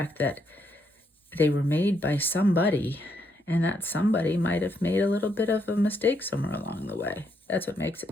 that they were made by somebody, and that somebody might have made a little bit of a mistake somewhere along the way. That's what makes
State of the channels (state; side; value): normal; both; correlation 0.76